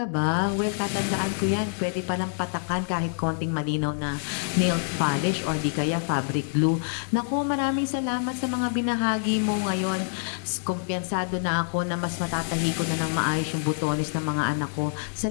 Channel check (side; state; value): right; silent; 61 dB below the other